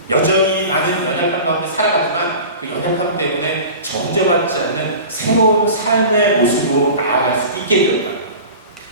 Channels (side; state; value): both; inverted; correlation -0.37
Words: 여전히 나는 연약함 가운데 살아가지만 그 연약함 때문에 정죄받지 않는 새로운 삶의 모습으로 나아갈 수 있게 되었다.